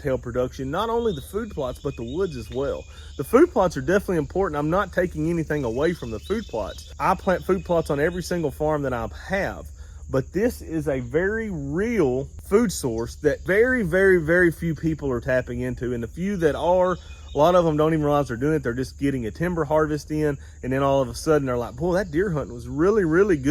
production, not only the food plots, but the woods as well. The food plots are definitely important. I'm not taking anything away from the food plots. I plant food plots on every single farm that I have, but this is a very real food source that very, very, very few people are tapping into. And the few that are, a lot of them don't even realize they're doing it. They're just getting a timber harvest in, and then all of a sudden they're like, boy, that deer hunting was really, really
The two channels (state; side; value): identical; both; correlation 1.00